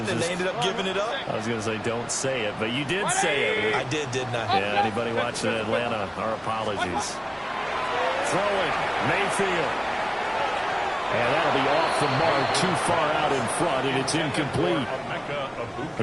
and they ended up giving it up? I was going to say, don't say it, but you did say it. I did, didn't I? Yeah, anybody watching Atlanta, our apologies. Throwing, Mayfield. And that'll be off the mark, too far out in front, and it's incomplete.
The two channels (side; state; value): both; identical; correlation 1.00